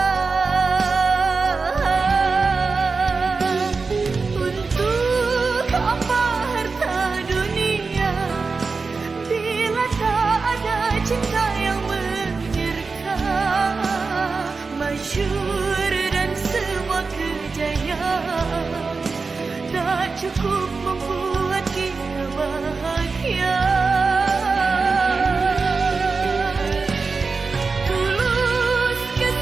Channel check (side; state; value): left; quieter; 4.4 dB